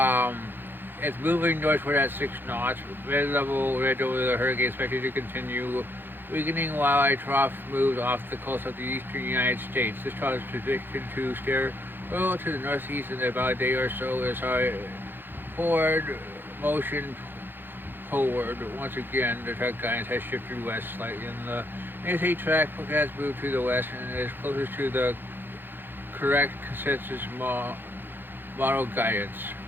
it's moving northward at 6 knots. Mid-level ridge over the hurricane expected to continue weakening while a trough moves off the coast of the eastern United States. This trough is predicted to steer well to the northeast in about a day or so as our forward motion forward. Once again, the track guidance has shifted west slightly, and the NSA track forecast moved to the west and is closest to the correct consensus model guidance.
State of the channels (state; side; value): late; left; 0.098 ms